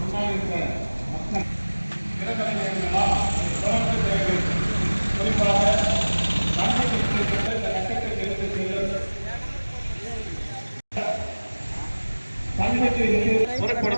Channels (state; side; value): inverted; both; correlation -1.00